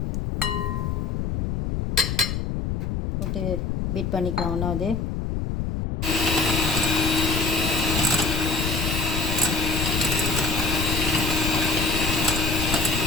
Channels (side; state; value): left; noise; rumble, 1 dB below the sound